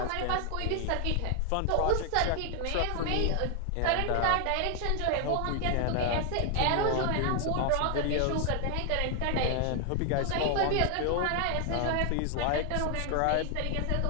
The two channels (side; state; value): both; different; correlation 0.00